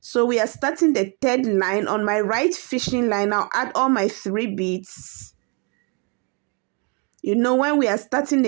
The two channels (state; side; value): quieter; left; 33.7 dB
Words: we are starting the 3rd line. On my right fishing line, I'll add all my 3 beads. You know, when we are starting